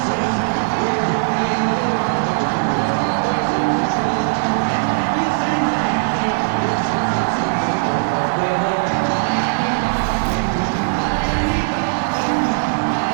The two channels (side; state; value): left; silent; digital silence